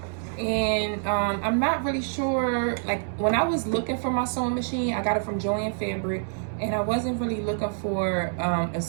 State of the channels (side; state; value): left; silent; 61 dB below the other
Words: And I'm not really sure, like when I was looking for my sewing machine, I got it from Joann Fabric, and I wasn't really looking for a